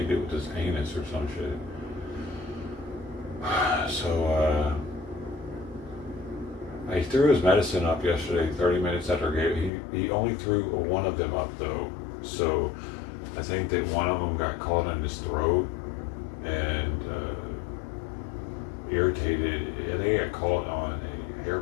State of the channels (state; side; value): drops out; right; at 9.7 s